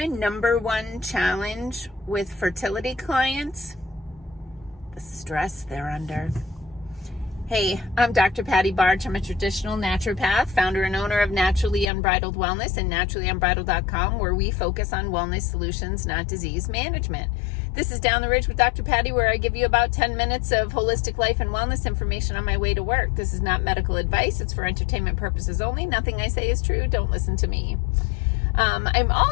number one challenge with fertility clients? The stress they're under. Hey, I'm Dr. Patty Barch. I'm a traditional naturopath, founder and owner of Naturally Unbridled Wellness and naturallyunbridled.com, where we focus on wellness solutions, not disease management. This is Down the Ridge with Dr. Patty, where I give you about 10 minutes of holistic life and wellness information on my way to work. This is not medical advice. It's for entertainment purposes only. Nothing I say is true. Don't listen to me. I'm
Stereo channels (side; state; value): right; drops out; at 11.9 s